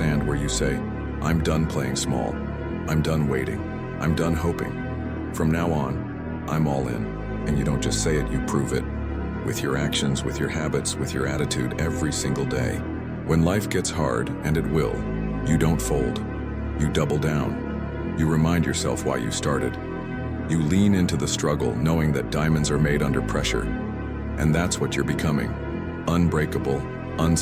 where you say, I'm done playing small. I'm done waiting. I'm done hoping. From now on, I'm all in. And you don't just say it, you prove it. With your actions, with your habits, with your attitude every single day. When life gets hard, and it will, you don't fold. You double down. You remind yourself why you started. You lean into the struggle, knowing that diamonds are made under pressure. And that's what you're becoming. Unbreakable,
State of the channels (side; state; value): both; identical; correlation 1.00